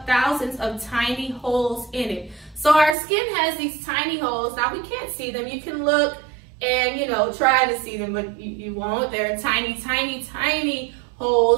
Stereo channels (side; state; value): left; drops out; at 3.0 s